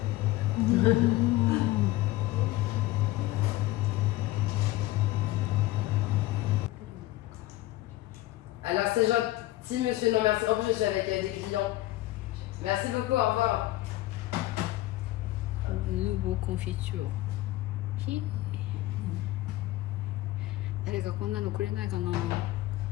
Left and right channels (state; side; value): quieter; right; 17.1 dB